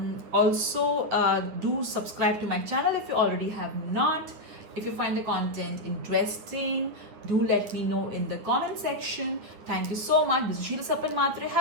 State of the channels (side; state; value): left; late; 9.5 ms